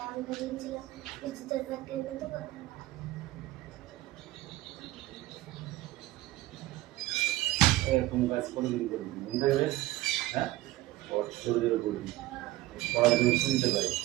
আমি বলেছিলাম বৃষ্টি তোর ব্যাগ কিনে দেবো। এরকম কাজ কোনোদিন করবি মনে থাকবে? হ্যাঁ, জোরে জোরে করবি, পড়াশোনা শুনতে পাই।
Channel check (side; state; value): left; quieter; 17.3 dB